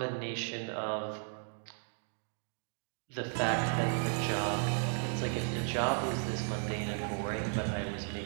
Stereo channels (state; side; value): silent; left; 54 dB below the other